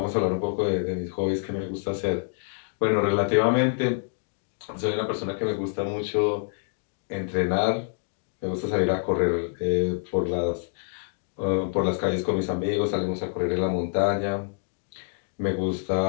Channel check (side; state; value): right; silent; 60 dB below the other